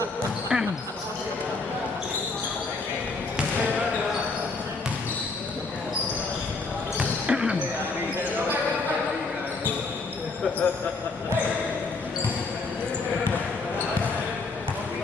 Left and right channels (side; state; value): right; quieter; 3.9 dB